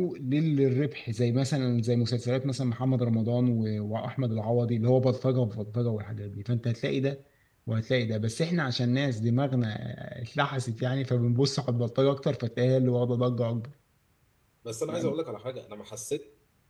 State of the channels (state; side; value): identical; both; correlation 1.00